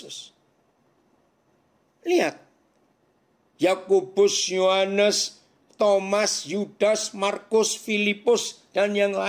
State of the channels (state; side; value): identical; both; correlation 1.00